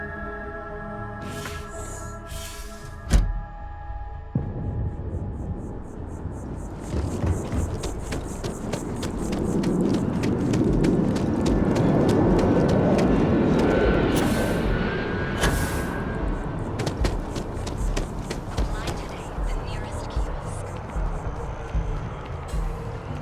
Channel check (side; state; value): both; identical; correlation 1.00